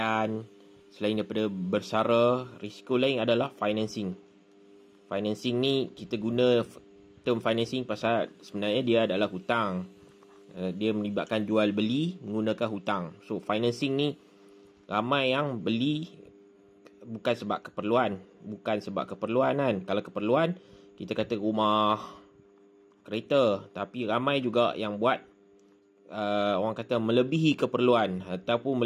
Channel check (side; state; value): both; identical; correlation 1.00